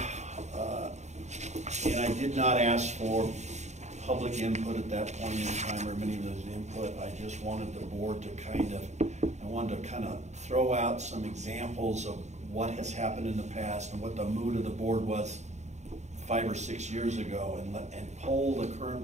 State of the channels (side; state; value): left; late; 0.33 ms